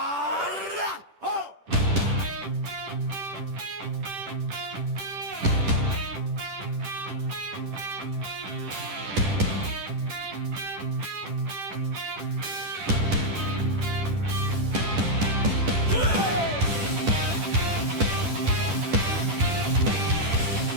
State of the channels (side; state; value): left; late; 10 ms